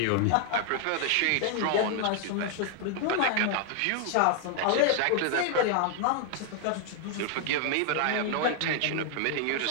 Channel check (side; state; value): both; different; correlation 0.00